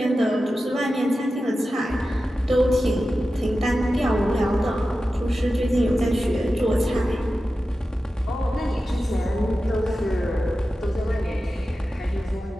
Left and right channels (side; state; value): both; normal; correlation 0.93